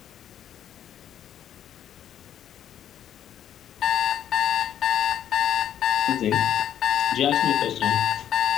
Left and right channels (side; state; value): right; quieter; 10.3 dB